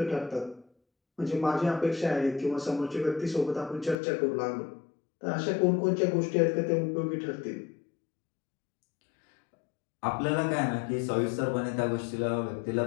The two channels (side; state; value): right; drops out; at 4.0 s